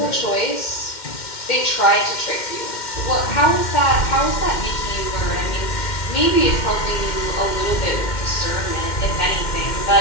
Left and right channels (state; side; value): late; right; 2.1 ms